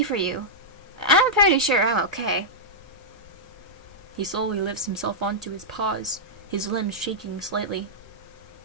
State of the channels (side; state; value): both; normal; correlation -0.10